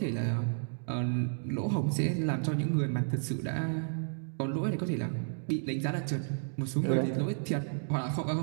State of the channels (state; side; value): silent; left; digital silence